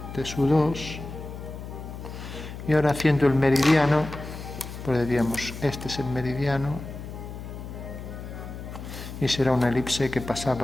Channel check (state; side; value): noise; left; hum, 10 dB below the sound